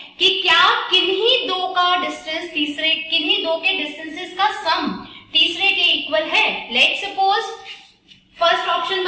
कि क्या किन्हीं दो का डिस्टेंस किन्हीं दो के डिस्टेंसेस का सम तीसरे के इक्वल है। लेट्स सपोज फर्स्ट ऑप्शन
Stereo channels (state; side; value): identical; both; correlation 1.00